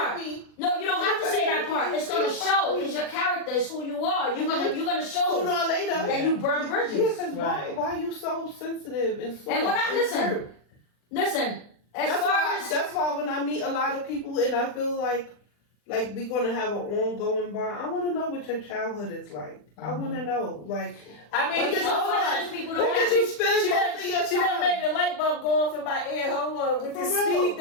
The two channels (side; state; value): right; late; 40 ms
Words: part. me. No, you don't have to say that part. It's gonna show. It's your character. It's who you are. You're gonna show Sooner or later. that you burn Yeah, bridges. because Right. why you so sensitive and so And when I listen, hurt? listen. As That's far why. as That's why when I meet a lot of people and I feel like we're gonna have an ongoing bond. I want to know what your childhood is like. I want to know, like. I mean, Because hold on. questions people don't Where did ask. you spend She most of your done, she done time? made the light bulb go off in my ear. Hold on, with the For real. speed